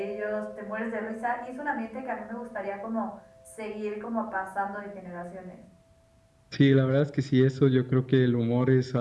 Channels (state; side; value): identical; both; correlation 1.00